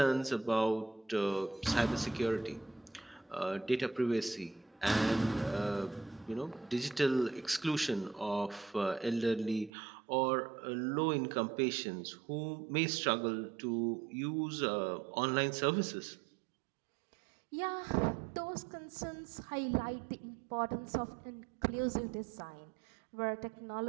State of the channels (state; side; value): drops out; left; at 9.7 s